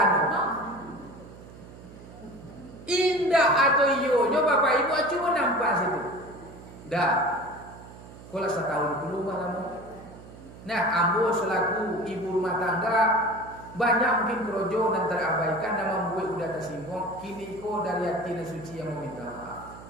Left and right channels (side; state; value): right; noise; hum, 17 dB below the sound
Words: Indah atau iyo, nyoba bapak ibu cuma nampak situ. Dah. Kalau 1 tahun dulu malam. Nah, ambo selaku ibu rumah tangga banyak mungkin kerojo dan terabaikan dan membuat udah tersinggung. Kini ko dari hati dan suci yang meminta maaf.